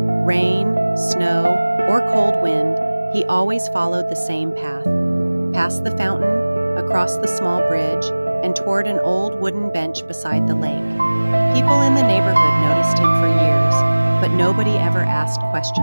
rain, snow, or cold wind, he always followed the same path. Past the fountain, across the small bridge, and toward an old wooden bench beside the lake. People in the neighborhood noticed him for years, but nobody ever asked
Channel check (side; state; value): both; inverted; correlation -1.00